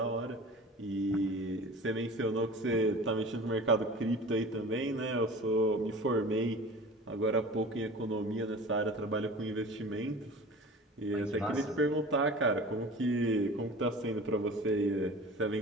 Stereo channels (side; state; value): both; normal; correlation 0.39